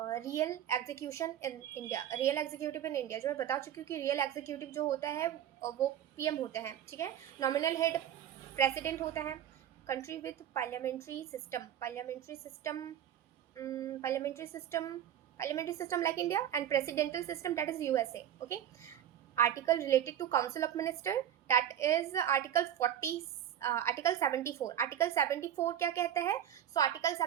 execution in India. Real executive in India, जो मैं बता चुकी हूँ कि रियल एग्जीक्यूटिव जो होता है वो पीएम होते हैं, ठीक है। नॉमिनल हेड प्रेसिडेंट होता है। Country with parliamentary system, parliamentary system like India, and presidential system, that is USA. Okay, article related to council of minister, that is article 40, article 74। article 74 क्या कहता है? So article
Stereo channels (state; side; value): quieter; left; 10.6 dB